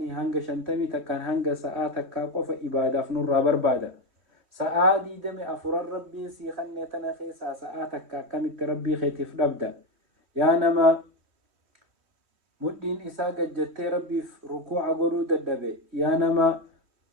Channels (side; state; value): left; late; 3.1 ms